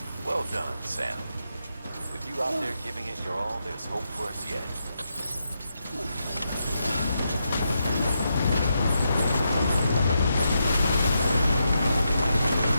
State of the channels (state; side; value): inverted; both; correlation -0.84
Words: Well done, Sam. With you out there giving it your all, there's hope for us yet.